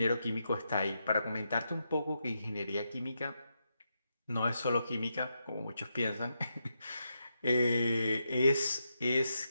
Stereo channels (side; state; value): both; inverted; correlation -0.84